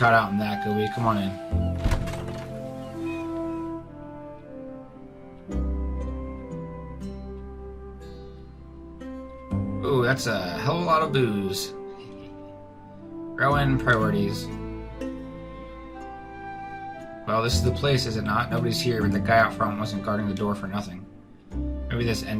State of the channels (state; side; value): identical; both; correlation 1.00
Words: out in that, could we? Come on in. Ooh, that's a hell of a lot of booze. Throw in priorities. Well, this is the place, is it not? Nobody's here, but the guy out front wasn't guarding the door for nothing. Maybe this